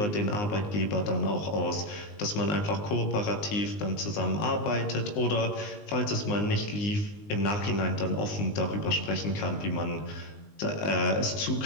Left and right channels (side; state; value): right; late; 19 ms